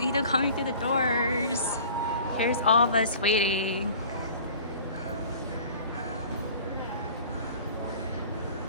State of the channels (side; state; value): both; inverted; correlation -0.45